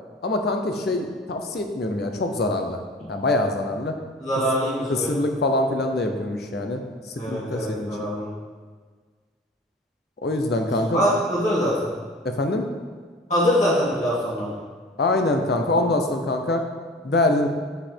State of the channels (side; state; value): both; normal; correlation 0.40